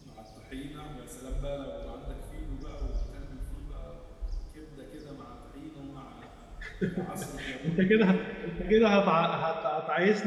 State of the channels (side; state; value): both; identical; correlation 1.00